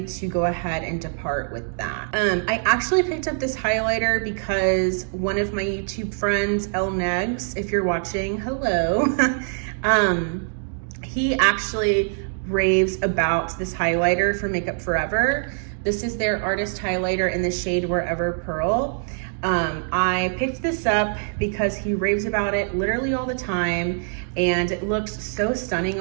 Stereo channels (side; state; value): left; silent; 63 dB below the other